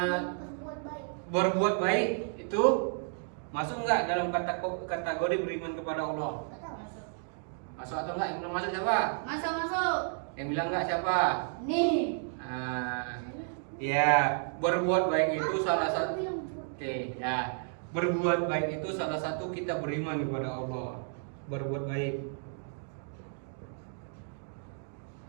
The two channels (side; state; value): left; silent; 56 dB below the other